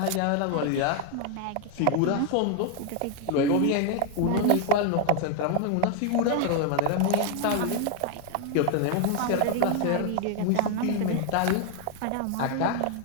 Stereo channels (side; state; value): both; different; correlation 0.00